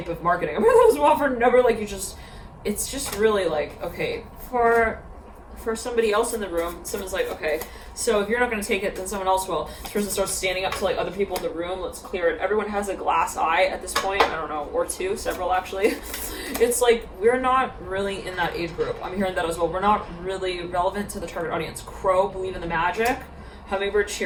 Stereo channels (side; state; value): both; identical; correlation 1.00